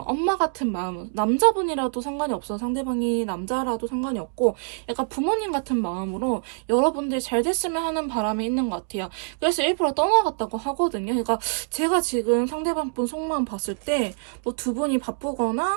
엄마 같은 마음, 남자분이라도 상관이 없어요. 상대방이 남자라도 상관이 없고 약간 부모님 같은 마음으로 여러분들 잘 됐으면 하는 바람이 있는 것 같아요. 그래서 일부러 떠나갔다고 하거든요. 그러니까 제가 지금 상대방 분 속마음 봤을 때 뭐 두 분이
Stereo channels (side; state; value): left; silent; digital silence